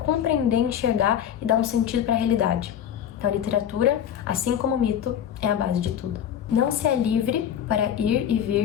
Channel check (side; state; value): right; quieter; 9.6 dB